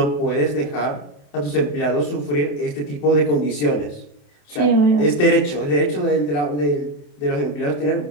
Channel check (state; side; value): late; right; 27 ms